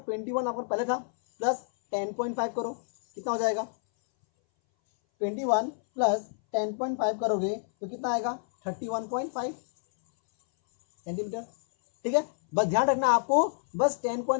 21 आपका पहले था, प्लस 10.5 करो, कितना हो जाएगा, 21 प्लस 10.5 करोगे तो कितना आएगा, 31.5 सेंटीमीटर, ठीक है. बस ध्यान रखना आपको, बस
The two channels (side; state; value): right; silent; 59 dB below the other